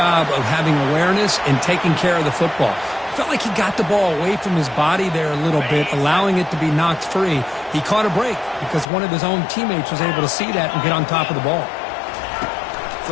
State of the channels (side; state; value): right; drops out; at 8.8 s